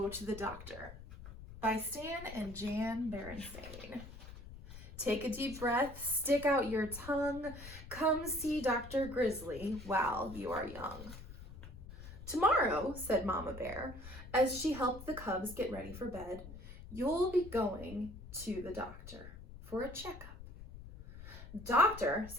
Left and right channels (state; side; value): noise; left; rumble, 14 dB below the sound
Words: to the Doctor by Stan and Jan Berenstain. Take a deep breath, stick out your tongue, come see Dr. Grizzly while you are young. Tomorrow, said Mama Bear, as she helped the cubs get ready for bed, you'll be going to the doctor for a checkup. Doctor,